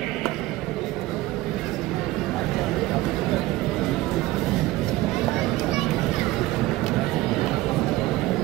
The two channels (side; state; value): left; quieter; 17.8 dB